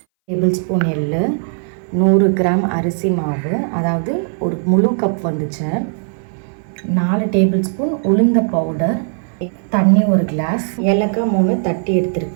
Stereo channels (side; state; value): left; silent; 62 dB below the other